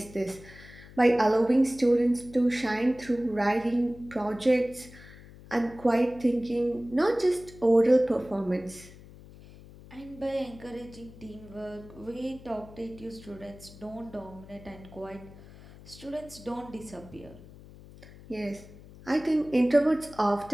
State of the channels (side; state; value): left; noise; hum, 19 dB below the sound